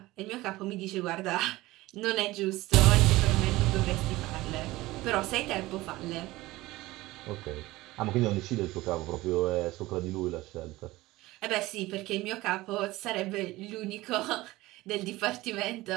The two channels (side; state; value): left; quieter; 18.8 dB